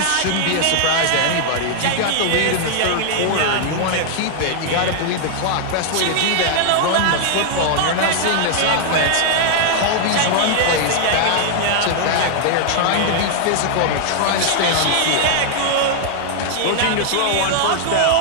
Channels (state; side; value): different; both; correlation 0.00